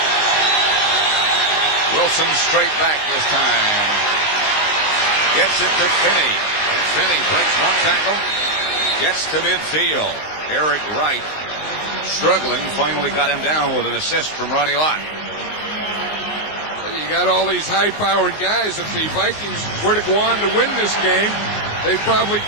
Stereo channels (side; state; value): right; late; 19 ms